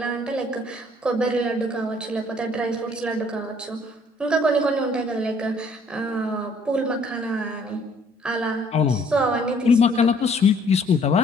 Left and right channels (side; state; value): both; normal; correlation 0.60